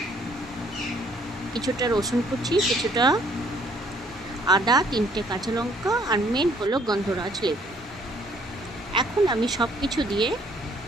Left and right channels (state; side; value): normal; both; correlation 0.62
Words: কিছুটা রসুন কুচি, কিছুটা আদা, 3টে কাঁচা লঙ্কা আর মেন হলো গন্ধরাজ লেবু। এখন আমি সব কিছু দিয়ে